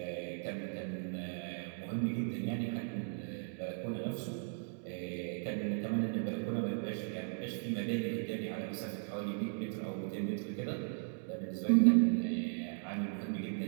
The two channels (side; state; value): left; silent; digital silence